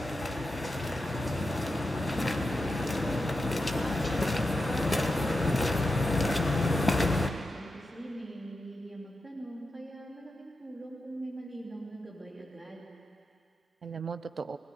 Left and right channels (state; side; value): normal; both; correlation 0.89